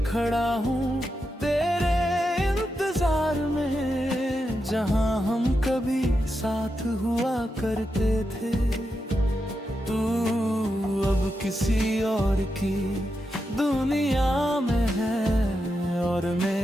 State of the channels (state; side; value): normal; both; correlation 0.87